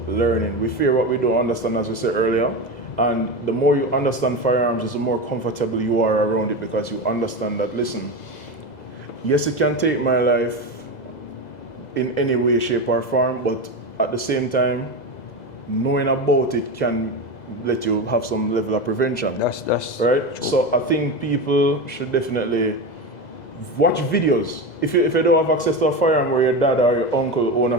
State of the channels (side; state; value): right; late; 2.0 ms